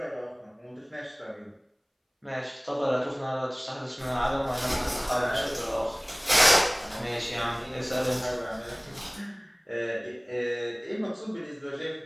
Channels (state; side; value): identical; both; correlation 1.00